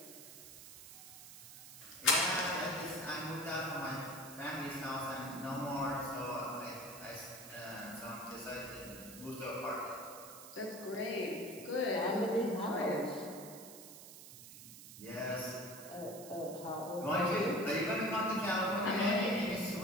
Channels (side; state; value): right; noise; hiss, 15 dB below the sound